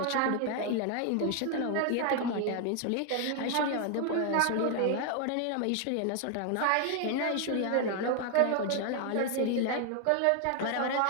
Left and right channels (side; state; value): both; different; correlation 0.00